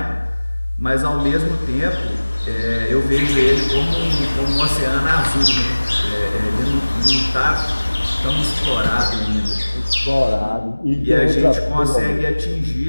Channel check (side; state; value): both; inverted; correlation -1.00